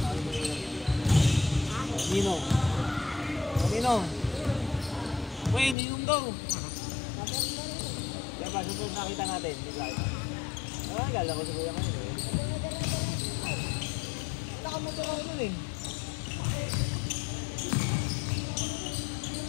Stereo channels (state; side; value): drops out; right; at 5.8 s